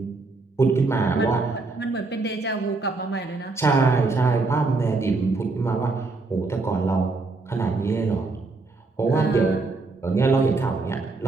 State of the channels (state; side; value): quieter; left; 3.7 dB